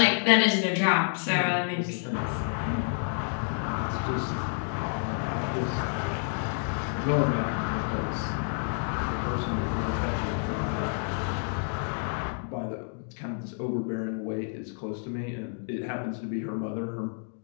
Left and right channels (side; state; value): right; silent; 56 dB below the other